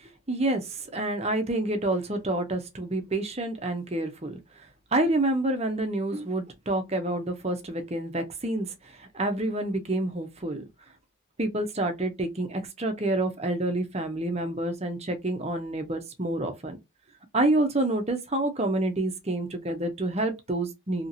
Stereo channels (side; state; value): both; normal; correlation 0.44